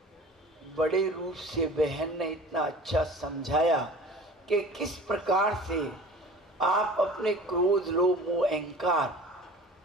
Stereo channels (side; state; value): both; normal; correlation 0.42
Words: बड़े रूप से बहन ने इतना अच्छा समझाया कि किस प्रकार से आप अपने क्रोध, लोभ, मोह, अहंकार,